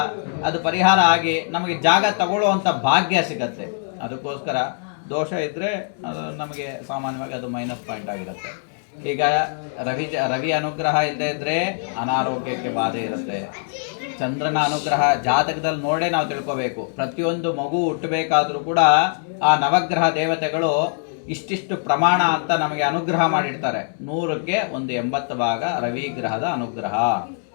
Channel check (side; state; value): right; silent; digital silence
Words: ಅದು ಪರಿಹಾರ ಆಗಿ ನಮಗೆ ಜಾಗ ತಗೊಳ್ಳುವಂಥ ಭಾಗ್ಯ ಸಿಗತ್ತೆ. ಅದಕ್ಕೋಸ್ಕರ ದೋಷ ಇದ್ದರೆ ಅದು ನಮಗೆ ಸಾಮಾನ್ಯವಾಗಿ ಅದು ಮೈನಸ್ ಪಾಯಿಂಟ್ ಆಗಿರುತ್ತೆ. ಈಗ ರವಿ ಅನುಗ್ರಹ ಇಲ್ಲದೆ ಇದ್ದರೆ ಅನಾರೋಗ್ಯಕ್ಕೆ ಬಾಧೆ ಇರುತ್ತೆ. ಚಂದ್ರನ ಅನುಗ್ರಹ ಜಾತಕದಲ್ಲಿ ನೋಡೇ ನಾವು ತಿಳ್ಕೋಬೇಕು. ಪ್ರತಿಯೊಂದು ಮಗು ಹುಟ್ಟಬೇಕಾದ್ರೂ ಕೂಡ ಆ ನವಗ್ರಹ ದೇವತೆಗಳು ಇಷ್ಟಿಷ್ಟು ಪ್ರಮಾಣ ಅಂತ ನಮಗೆ ಅನುಗ್ರಹ ಮಾಡಿರ್ತಾರೆ. 100ಕ್ಕೆ ಒಂದು 80 ಭಾಗ ರವಿ ಗ್ರಹದ ಅನುಗ್ರಹ,